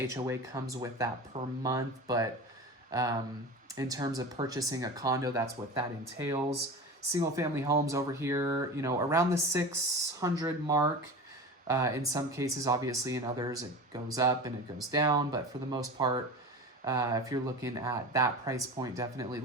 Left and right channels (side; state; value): both; normal; correlation 0.31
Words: HOA comes with that per month, but in terms of purchasing a condo, that's what that entails. Single family homes over here, you know, around the 600 mark. In some cases, obviously, in others, it goes up and it goes down. But for the most part, if you're looking at that price point, definitely